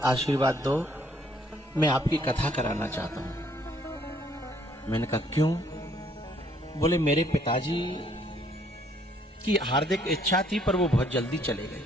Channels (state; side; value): normal; both; correlation 0.65